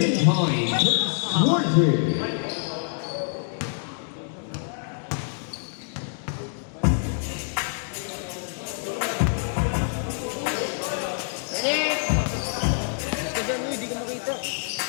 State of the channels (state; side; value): silent; right; 57 dB below the other